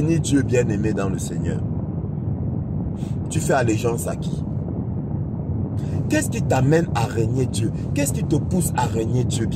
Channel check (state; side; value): identical; both; correlation 1.00